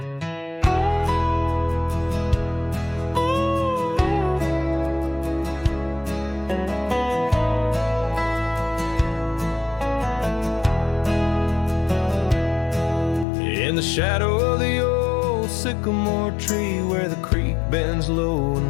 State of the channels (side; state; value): right; drops out; at 13.2 s